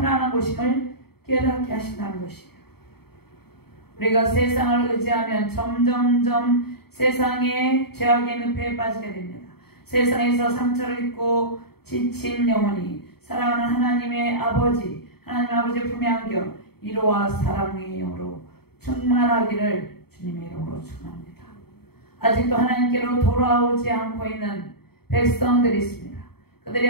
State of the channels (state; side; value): late; right; 0.96 ms